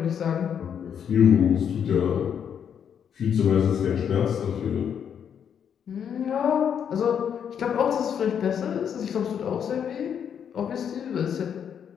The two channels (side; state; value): right; quieter; 8.1 dB